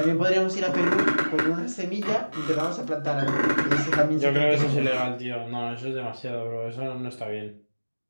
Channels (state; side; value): inverted; both; correlation -1.00